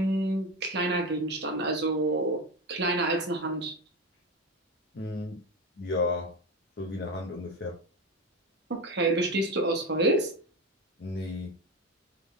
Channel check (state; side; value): normal; both; correlation 0.19